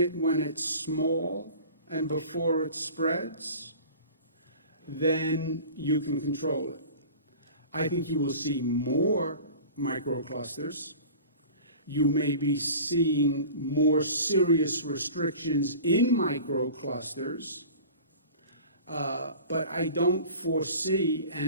when it's small and before it spreads, then you can control it. I think you will see more microclusters. You may be seeing more serious restrictions in microclusters, but I don't foresee,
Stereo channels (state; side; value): inverted; both; correlation -0.40